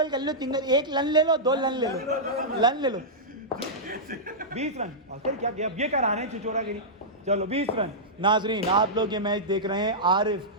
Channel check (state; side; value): normal; both; correlation -0.12